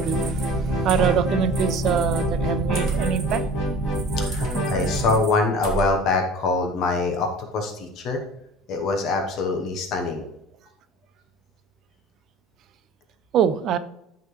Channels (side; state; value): both; normal; correlation 0.41